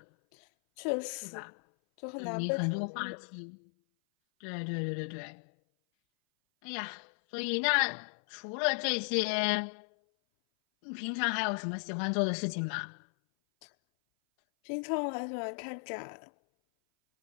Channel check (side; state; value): right; silent; 54 dB below the other